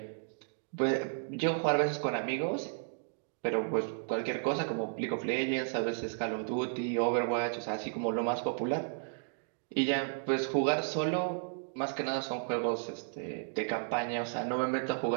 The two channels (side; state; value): left; silent; digital silence